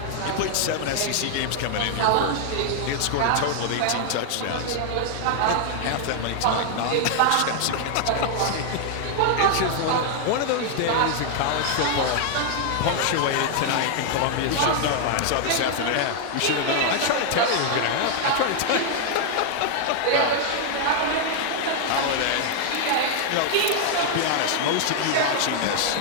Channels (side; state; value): both; different; correlation 0.00